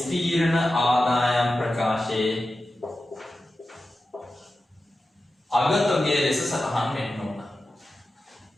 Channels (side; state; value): both; normal; correlation 0.93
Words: අගතොගයේ ලෙස සටහන් වෙන්න ඕන.